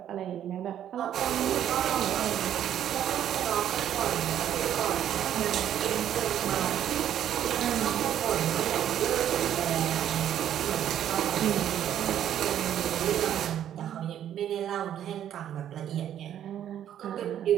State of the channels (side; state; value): left; quieter; 10.5 dB